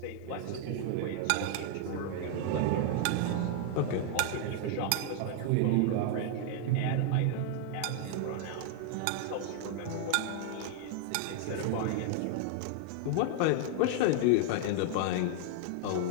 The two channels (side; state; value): both; different; correlation -0.01